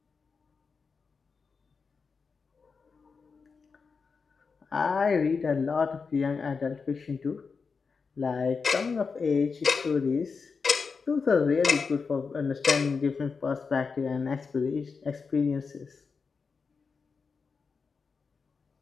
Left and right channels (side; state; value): right; quieter; 5.1 dB